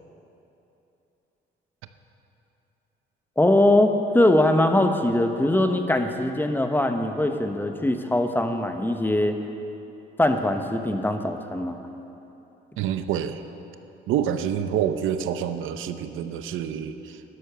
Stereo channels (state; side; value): normal; both; correlation 0.76